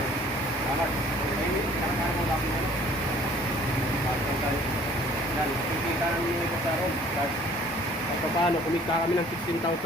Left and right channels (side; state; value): both; normal; correlation 0.54